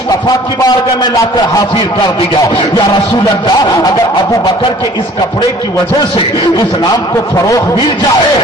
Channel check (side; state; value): both; normal; correlation 0.52